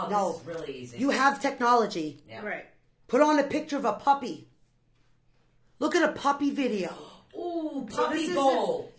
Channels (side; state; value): both; identical; correlation 1.00